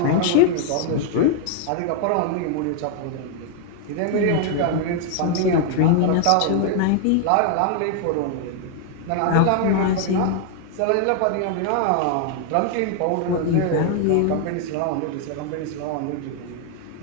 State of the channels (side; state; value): both; different; correlation 0.00